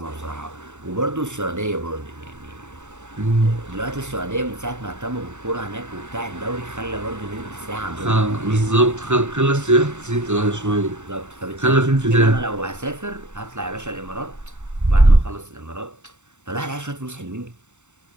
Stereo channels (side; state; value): left; late; 0.84 ms